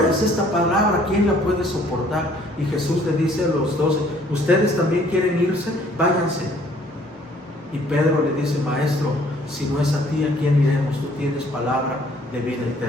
es esta palabra, ¿quién la puede soportar? Y Jesús le dice a los 12: ¿ustedes también quieren irse? Váyanse. Y Pedro le dice: maestro, si no es a ti, ¿a quién iremos? Tú tienes palabra de vida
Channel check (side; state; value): both; normal; correlation 0.60